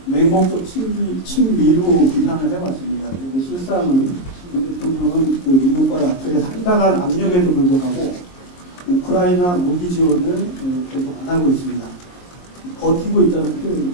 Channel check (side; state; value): right; late; 22 ms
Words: 맹목적 친미로 비판을 해왔습니다. 그런데 실상은 윤 대통령은 미국과 나토의 상당한 압력에도 불구하고 우크라이나 무기 지원을 계속 안 하고 있습니다. 버티고 있다는 표현이